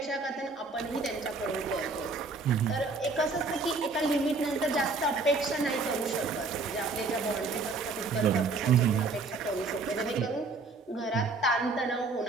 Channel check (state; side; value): quieter; left; 3.8 dB